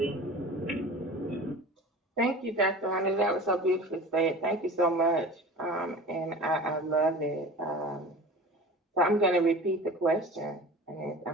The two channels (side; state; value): both; normal; correlation 0.37